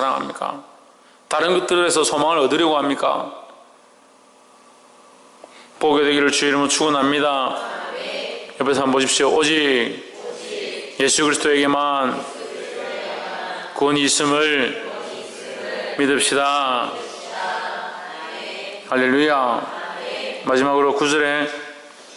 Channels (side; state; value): both; identical; correlation 1.00